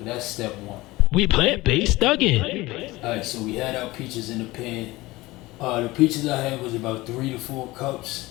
that's step one. We plant-based Thuggin. Alright, so we had our peaches in the pan. The peaches I had was about 3 to 4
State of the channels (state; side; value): quieter; right; 19.9 dB